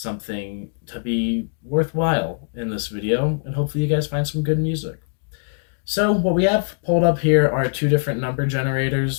to be worthwhile in this video, and hopefully you guys find some good music. So what we have pulled up here are two different number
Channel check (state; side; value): silent; right; digital silence